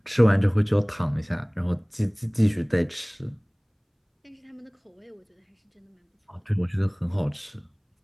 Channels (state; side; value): identical; both; correlation 1.00